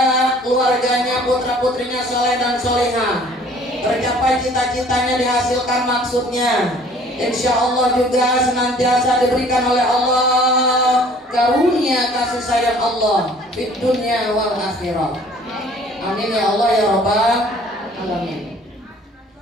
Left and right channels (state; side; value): normal; both; correlation 0.53